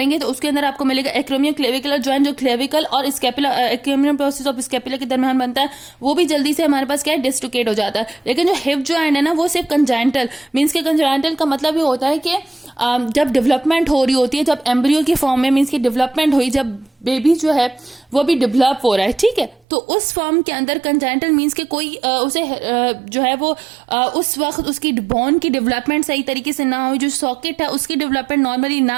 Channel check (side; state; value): left; drops out; at 19.6 s